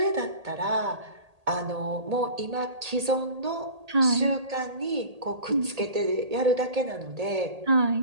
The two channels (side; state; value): left; late; 1.8 ms